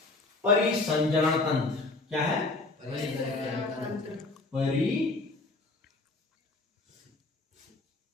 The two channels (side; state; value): right; quieter; 3.3 dB